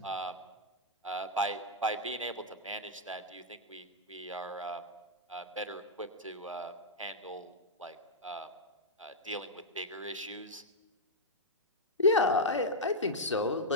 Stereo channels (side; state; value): both; normal; correlation -0.06